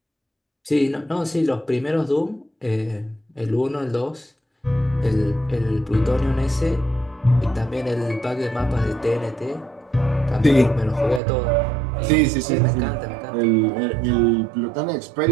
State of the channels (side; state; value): left; drops out; at 11.2 s